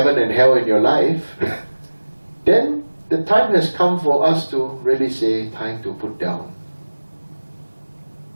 and hell in your life, then the time has come for us to really say, time to put down.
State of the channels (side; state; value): both; inverted; correlation -1.00